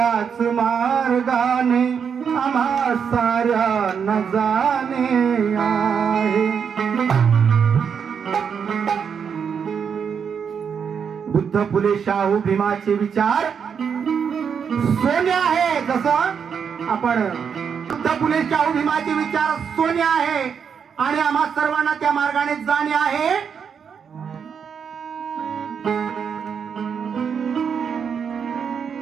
मार्गाने आम्हा साऱ्यांना जाणे आहे। बुद्ध फुले शाहू भीमाचे विचार सोने आहे। जसं आपण बुद्ध फुले शाहू भीमाचे विचार सोने आहे आणि आम्हा सर्वांना त्या मार्गाने जाणे आहे।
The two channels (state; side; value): quieter; left; 6.9 dB